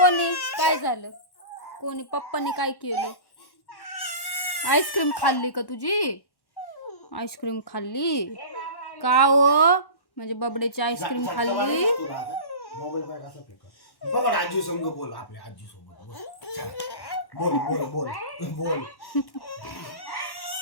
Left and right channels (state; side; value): late; right; 1.1 ms